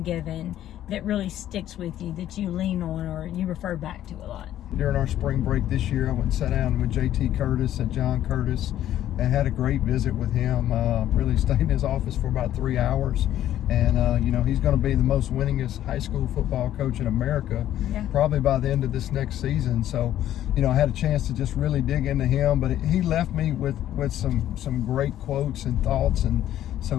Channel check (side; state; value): right; quieter; 12.2 dB